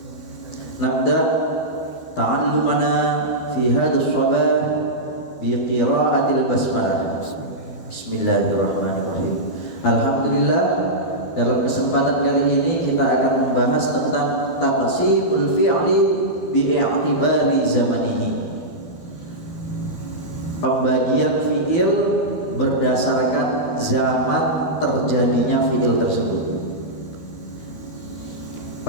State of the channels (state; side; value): late; right; 12 ms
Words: Nabda ta'allumana fi hadha as-sabah bi qira'atil basmalah. Bismillahirrahmanirrahim. Alhamdulillah, dalam kesempatan kali ini kita akan membahas tentang taqsimul fi'li bi'i'tibari zamanihi. Pembagian fi'il berdasarkan zaman terjadinya fi'il tersebut.